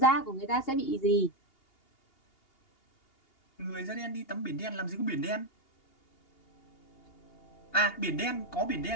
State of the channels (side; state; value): right; late; 2.8 ms